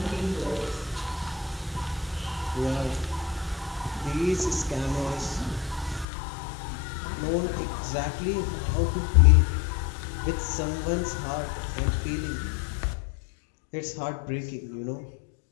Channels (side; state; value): right; drops out; at 6.1 s